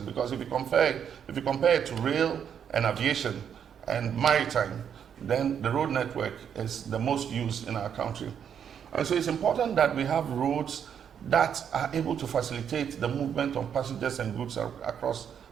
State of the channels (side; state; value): left; quieter; 8.2 dB